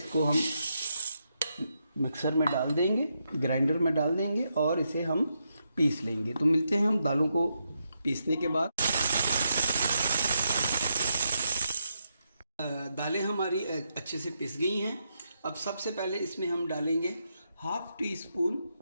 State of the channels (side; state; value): both; inverted; correlation -0.82